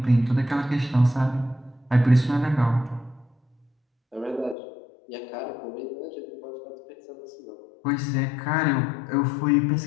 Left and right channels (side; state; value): right; drops out; at 4.5 s